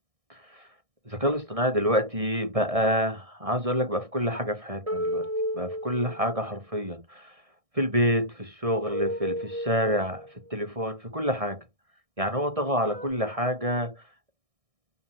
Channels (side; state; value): left; late; 1.6 ms